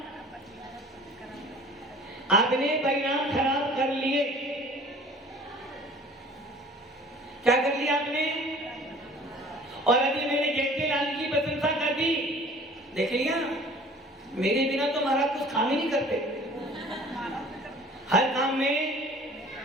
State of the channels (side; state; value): both; normal; correlation 0.48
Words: आपने परिणाम खराब कर लिए। क्या कर लिया आपने? और अभी मैंने जयंती लाल की प्रशंसा कर दी, देख लिया, मेरे बिना तो महाराज कुछ काम ही नहीं करते। हर काम में